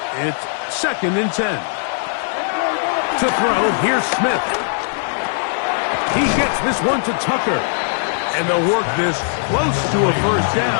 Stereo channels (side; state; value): right; silent; 66 dB below the other